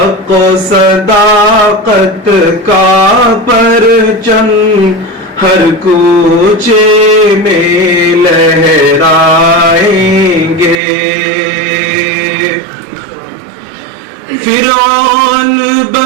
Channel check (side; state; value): left; drops out; at 10.8 s